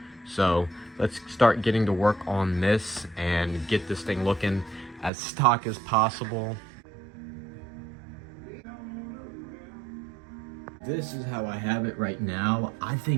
So let's start getting to work on this and get this thing looking as stock as possible. This is how I have it right now. I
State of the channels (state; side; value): drops out; left; at 5.1 s